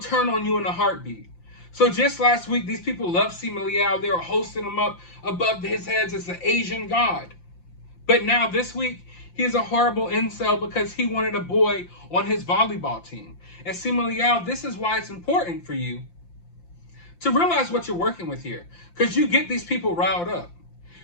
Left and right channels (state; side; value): late; right; 5.8 ms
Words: on you in a heartbeat. So just last week, these people loved Simu Liu. They were hosting him up above his heads as the Asian god. But now this week, he's a horrible incel because he wanted a boy on his volleyball team. And Simu Liu, this is why it's important for you to realize what you're working with here, because you get these people riled up.